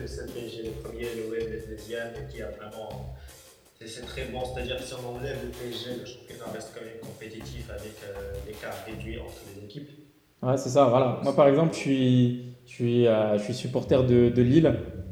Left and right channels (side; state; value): both; identical; correlation 1.00